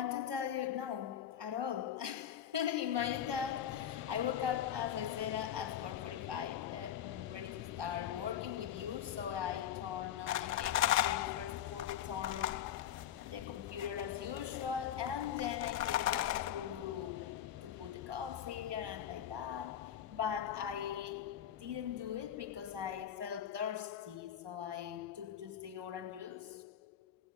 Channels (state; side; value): quieter; right; 10.3 dB